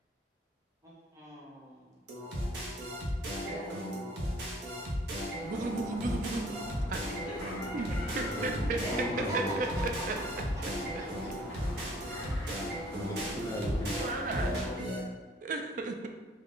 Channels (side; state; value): both; normal; correlation 0.57